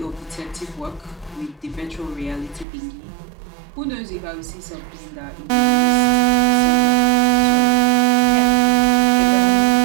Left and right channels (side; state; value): left; drops out; at 2.7 s